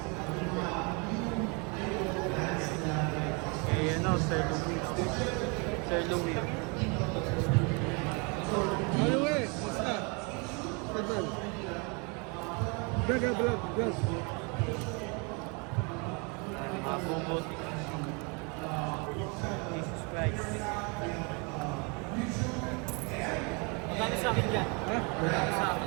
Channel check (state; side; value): quieter; left; 32.0 dB